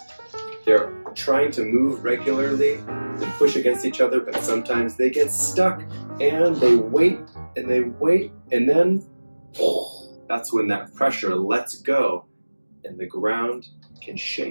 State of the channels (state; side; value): inverted; both; correlation -1.00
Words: They're trying to move regularly and push against each other, but sometimes they get stuck and they wait, and then that's when that pressure lets go and the ground can